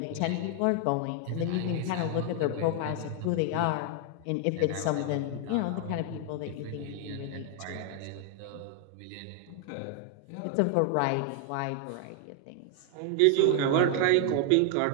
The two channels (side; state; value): both; different; correlation 0.00